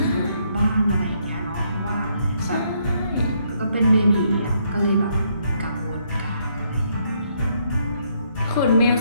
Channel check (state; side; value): inverted; both; correlation -0.72